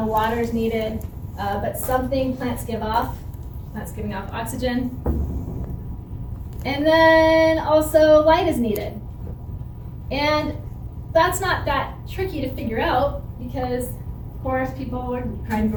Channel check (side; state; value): both; identical; correlation 1.00